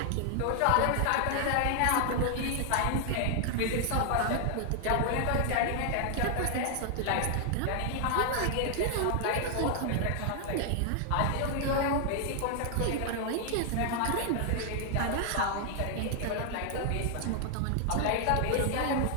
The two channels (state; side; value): different; both; correlation 0.00